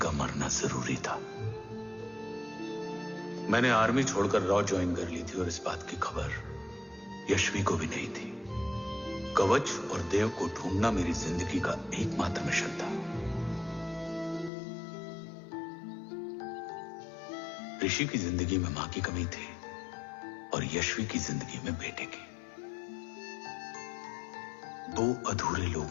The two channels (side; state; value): right; drops out; at 14.5 s